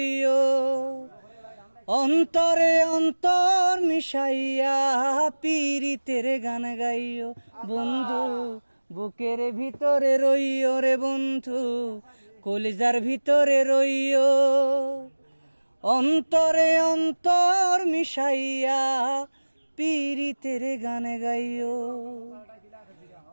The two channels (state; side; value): inverted; both; correlation -1.00